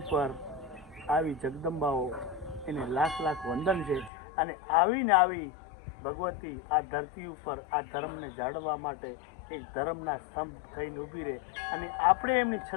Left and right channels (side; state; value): right; drops out; at 4.1 s